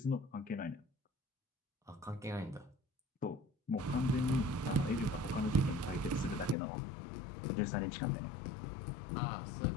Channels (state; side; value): drops out; right; at 6.6 s